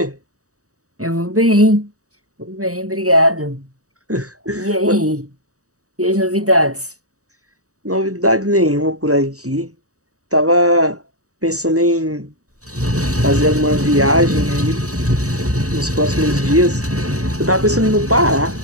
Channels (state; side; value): late; left; 0.66 ms